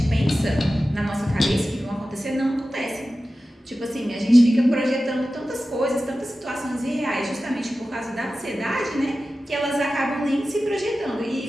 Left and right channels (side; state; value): both; normal; correlation 0.94